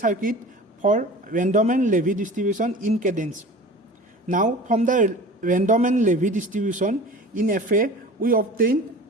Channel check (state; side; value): normal; both; correlation 0.39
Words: for random and Levy distribution in cadence. Now, from the random and Levy distribution in FA, we obtain